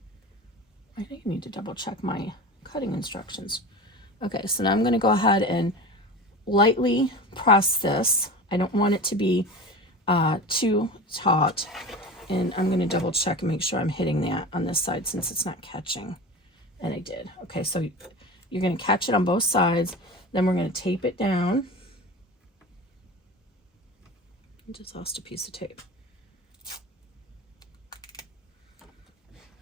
I think I need to double check my cutting instructions. Okay, so now I'm going to go ahead and lightly press this. I don't want it to be too taut. And I'm going to double check and make sure I'm hitting that on this side since it's not catching. And I did. Okay, so you're going to catch it on both sides. Then we're going to tape it down. I just lost a piece of tape.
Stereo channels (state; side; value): normal; both; correlation 0.31